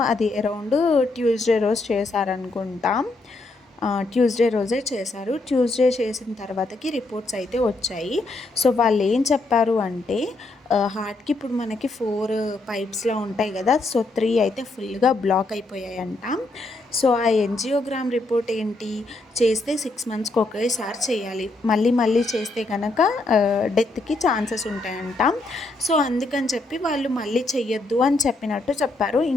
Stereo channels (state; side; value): quieter; right; 3.0 dB